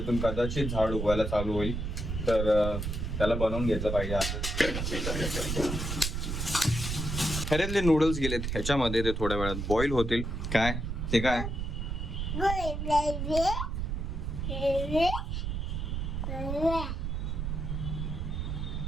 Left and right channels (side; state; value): right; noise; rumble, 3 dB below the sound